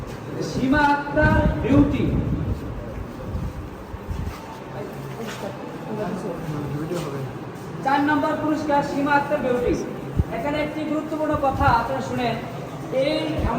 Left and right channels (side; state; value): both; identical; correlation 1.00